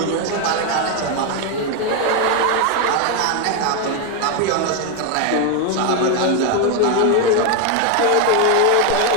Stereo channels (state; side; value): different; both; correlation 0.01